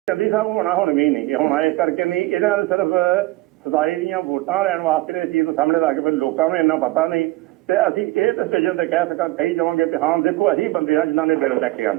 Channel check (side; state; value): left; quieter; 19.3 dB